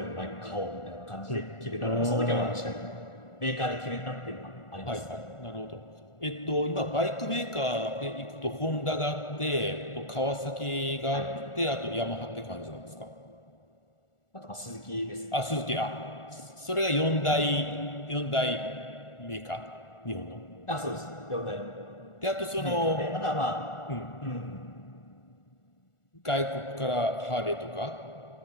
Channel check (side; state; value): right; late; 1.4 ms